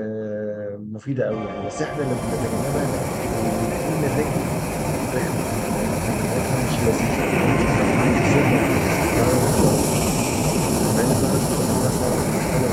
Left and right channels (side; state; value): both; identical; correlation 1.00